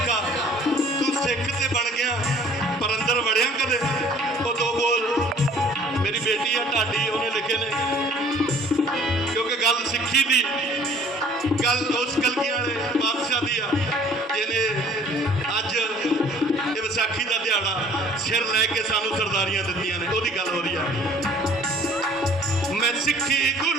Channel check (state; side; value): normal; both; correlation 0.54